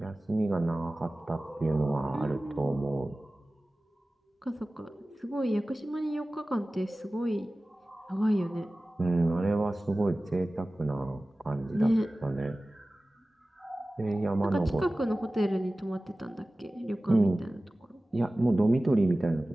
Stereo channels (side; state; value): both; normal; correlation 0.97